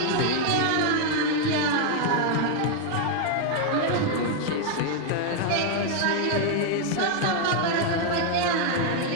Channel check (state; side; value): different; both; correlation 0.00